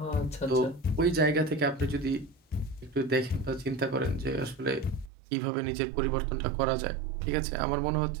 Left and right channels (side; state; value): left; drops out; at 5.1 s